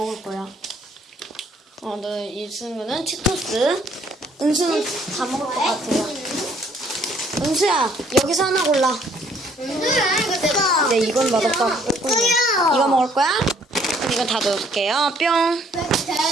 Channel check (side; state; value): both; normal; correlation 0.63